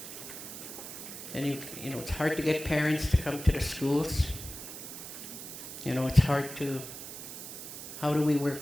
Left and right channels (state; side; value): noise; right; hiss, 10 dB below the sound